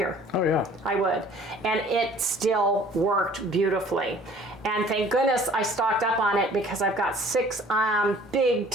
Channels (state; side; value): normal; both; correlation 0.52